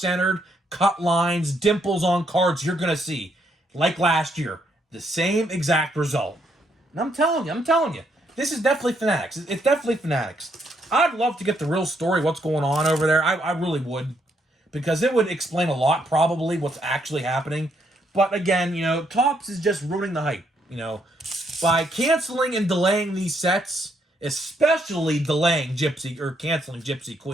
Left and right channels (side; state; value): both; normal; correlation 0.74